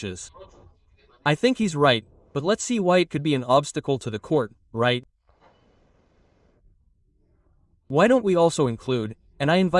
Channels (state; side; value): identical; both; correlation 1.00